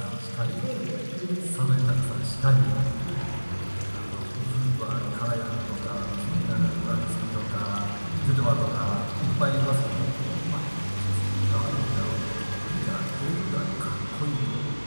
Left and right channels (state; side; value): inverted; both; correlation -1.00